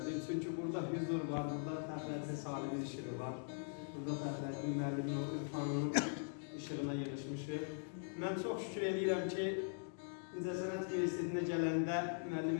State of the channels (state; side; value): silent; right; digital silence